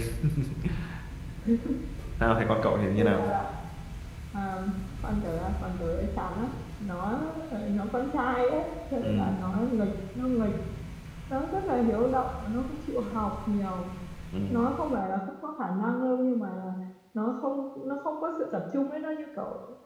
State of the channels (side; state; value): both; identical; correlation 1.00